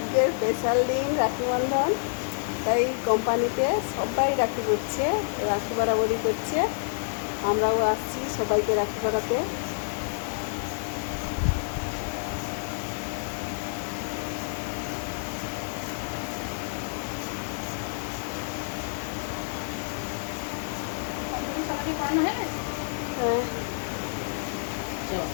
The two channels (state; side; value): silent; right; digital silence